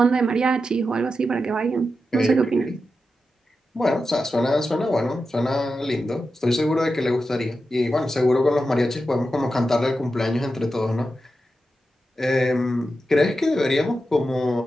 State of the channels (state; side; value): normal; both; correlation 0.90